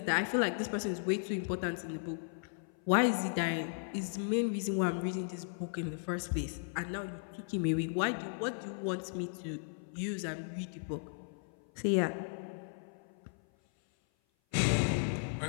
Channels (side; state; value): right; silent; 54 dB below the other